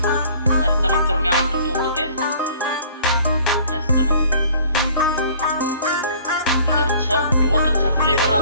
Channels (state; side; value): inverted; both; correlation -0.53